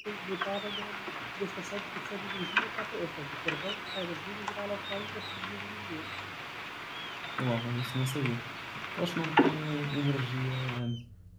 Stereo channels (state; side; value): identical; both; correlation 1.00